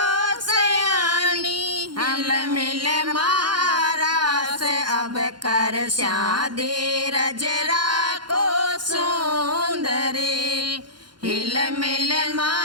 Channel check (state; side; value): late; left; 0.71 ms